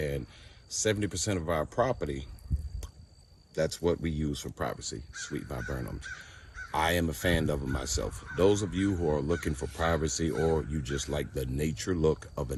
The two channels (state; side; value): identical; both; correlation 1.00